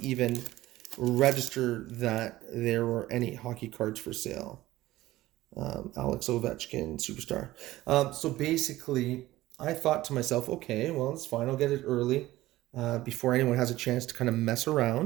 even register that there were any hockey cards for sale. Alex Ovechkin, superstar. So basically, I thought to myself, okay, well, it's fine. I'll get it early before anyone has a chance to kind of mess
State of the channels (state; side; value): quieter; left; 16.5 dB